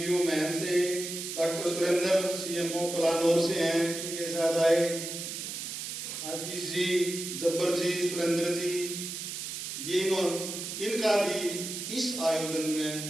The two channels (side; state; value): right; noise; hiss, 6 dB below the sound